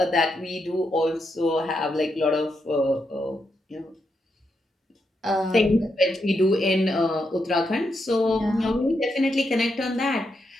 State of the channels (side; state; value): both; normal; correlation 0.82